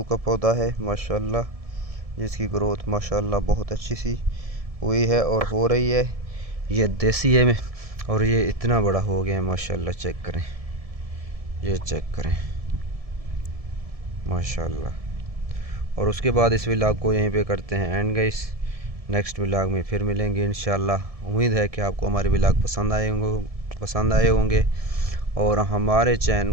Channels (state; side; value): late; left; 1.7 ms